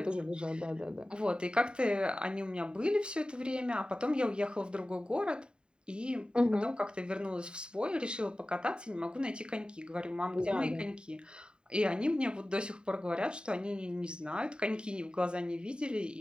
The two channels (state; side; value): late; left; 0.050 ms